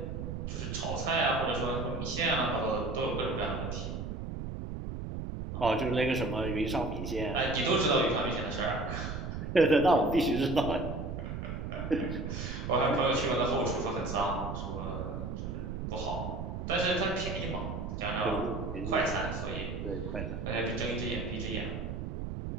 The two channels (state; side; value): noise; right; rumble, 5 dB below the sound